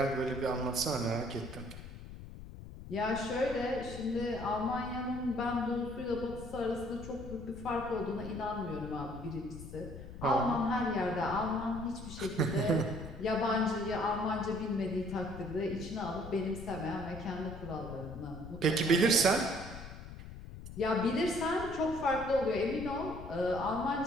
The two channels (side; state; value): left; noise; rumble, 12 dB below the sound